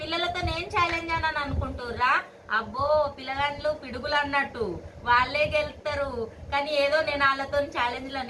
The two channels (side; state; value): both; identical; correlation 1.00